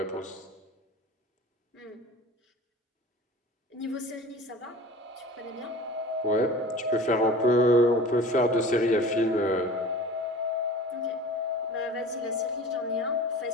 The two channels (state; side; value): normal; both; correlation 0.39